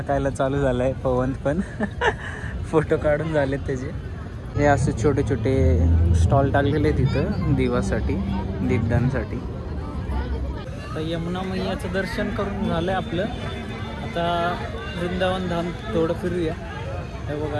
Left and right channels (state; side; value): identical; both; correlation 1.00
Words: चालू झालाय पवन पण. फोटो काढून झालेत त्याचे. हे असे छोटे छोटे स्टॉल टाकलेले तिथं दिवासाठी दीपदानसाठी. आता यमुना मैयाचं दर्शन करून झालंय आपलं. आता वृंदावन धाम थोडं फिरूया. हे बघा